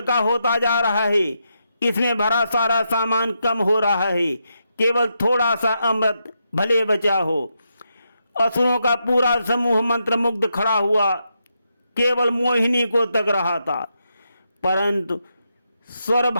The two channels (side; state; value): both; inverted; correlation -0.83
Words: होता जा रहा है, इसमें भरा सारा सामान कम हो रहा है, केवल थोड़ा सा अमृत भले बचा हो। असुरों का पूरा समूह मंत्रमुग्ध खड़ा हुआ, केवल मोहिनी को तक रहा था। परंतु